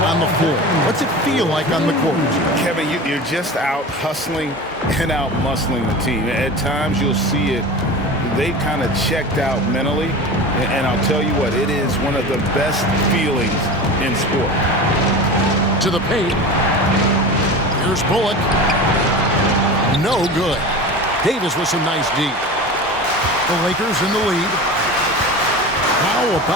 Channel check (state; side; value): normal; both; correlation 0.32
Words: on the floor? What's it feel like on the court? Kevin, you're just out hustling and out muscling the team. At times you'll see it. They've kind of checked out mentally, and I'll tell you what, it is one of the best feelings in sport. To the paint. Here's Bullock. No good. Davis with some nice D. The Lakers in the lead. How